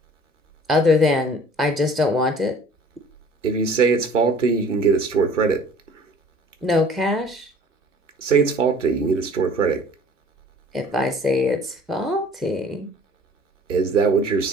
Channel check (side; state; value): both; normal; correlation 0.50